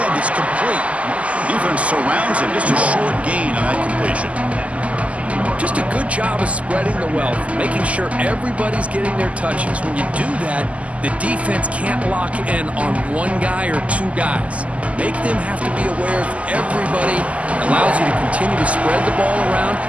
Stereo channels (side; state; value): left; late; 0.066 ms